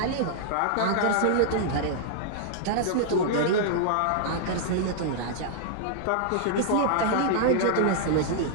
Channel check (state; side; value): different; both; correlation -0.01